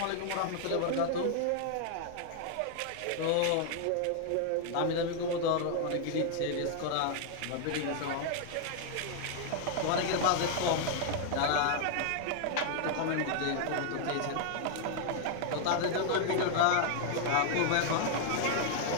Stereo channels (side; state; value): both; different; correlation 0.00